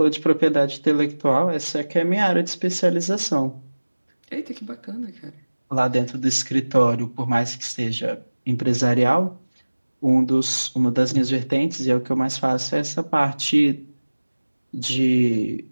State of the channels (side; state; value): both; inverted; correlation -1.00